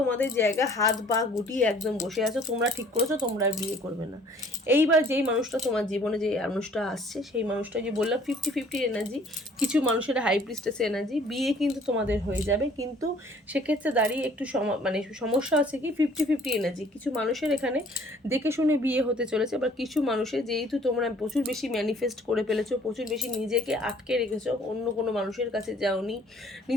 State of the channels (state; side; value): normal; both; correlation 0.56